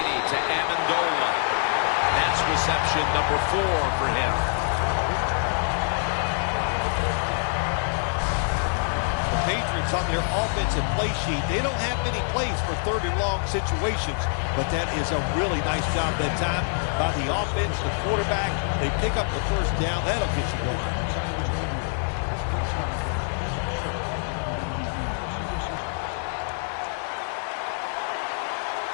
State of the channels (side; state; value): right; silent; 61 dB below the other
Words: to Amendola. That's reception number 4 for him. Patriots on their offensive play sheet, they don't have many plays for 3rd and long situations, but that is a really nice job that time by the offense, the quarterback. They pick up the first down. That'll get you going.